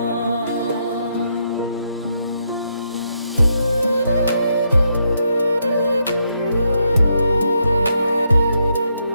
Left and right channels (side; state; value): both; inverted; correlation -0.78